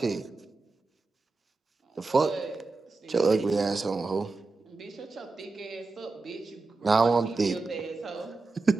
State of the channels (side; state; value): left; quieter; 3.7 dB